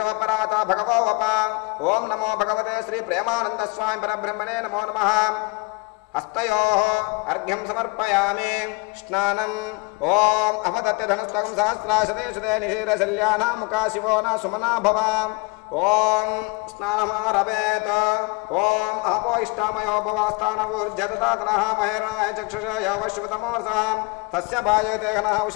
भगवो वपा। ओं नमो भगवते श्री प्रेमानंद स्वामी परब्रह्मणे नमो नमः। हस्तयोः अर्घ्यं समर्पयामि स्नानम्। ओम अपतत्य धनुस्तकं सहस्राशते शुते निशीरशल्याना मुखा शिवो न सुमना भव। ओम स्नानमारभेत। ओम आपो इष्टामयो भवास्थानवुर्जततातनः महेरणाय चक्षुषय वश्वतमोर्षः तस्य भाजयते घनः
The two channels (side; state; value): right; quieter; 27.9 dB